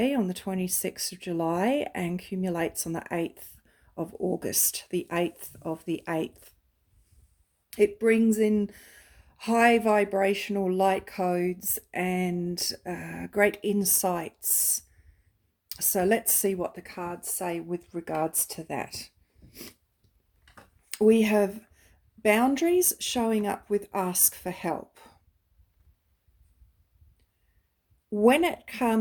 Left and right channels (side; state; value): both; identical; correlation 1.00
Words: on the 26th of July and accumulates on the 8th of August, the 8th of the 8th. It brings in high vibrational light codes and great insights. So let's see what the cards say with regards to that. We have boundaries showing up with ask for help. When it